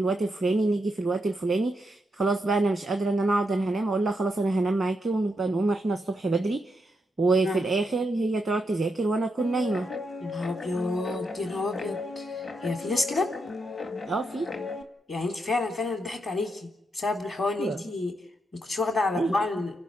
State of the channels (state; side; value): normal; both; correlation 0.82